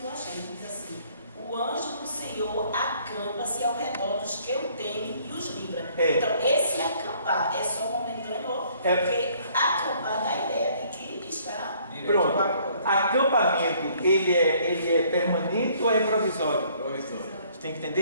eu achei, diz assim: o anjo do Senhor acampa-se ao redor dos que o temem e os livra. Então esse acampar é só momentâneo, porque acampar dá a ideia de que está... Pronto, acampamento, ele é permanente ou é provisório? Você tem que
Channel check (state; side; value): inverted; both; correlation -0.61